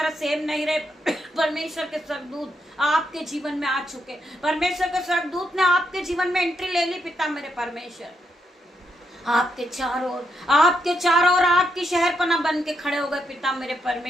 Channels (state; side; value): normal; both; correlation 0.79